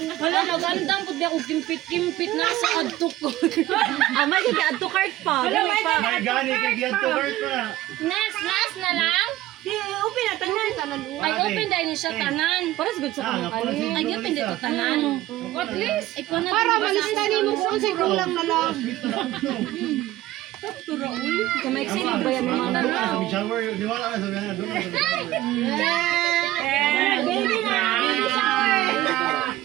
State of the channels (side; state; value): left; quieter; 15.6 dB